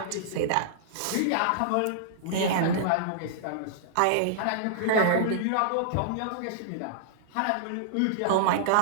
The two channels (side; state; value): both; different; correlation -0.02